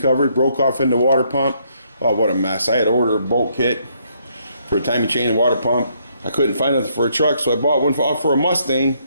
broke off in the water pump. Oh, what a mess. I had to order a bolt kit for a timing chain and water pump. I couldn't find nothing for a truck, so I bought one for a Mustang.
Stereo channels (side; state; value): both; inverted; correlation -0.71